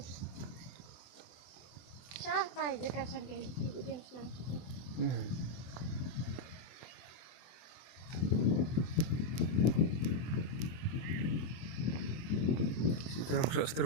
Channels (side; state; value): right; late; 24 ms